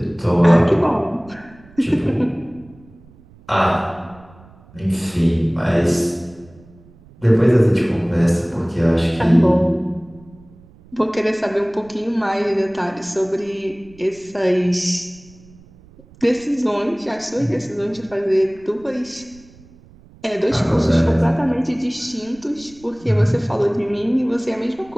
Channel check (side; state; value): right; noise; rumble, 25 dB below the sound